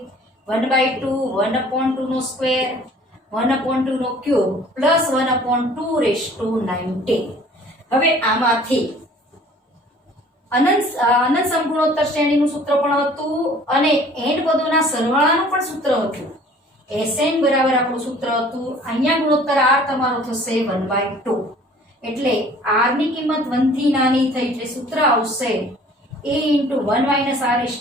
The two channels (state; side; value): normal; both; correlation 0.51